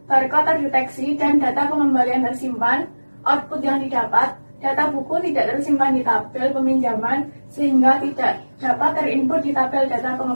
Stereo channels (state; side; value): inverted; both; correlation -1.00